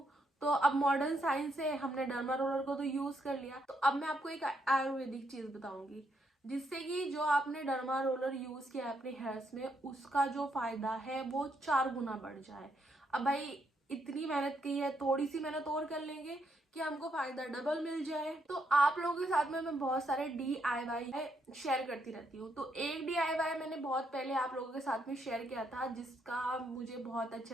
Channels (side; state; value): both; normal; correlation 0.76